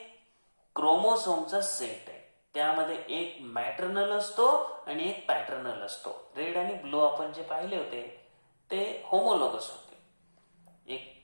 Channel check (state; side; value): inverted; both; correlation -1.00